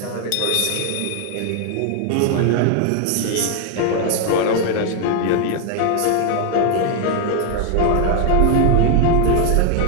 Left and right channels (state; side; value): different; both; correlation 0.00